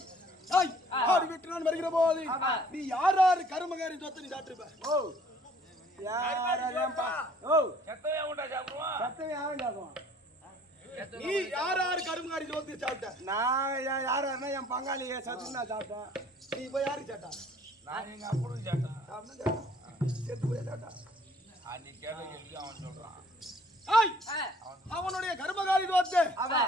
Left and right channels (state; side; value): normal; both; correlation 0.56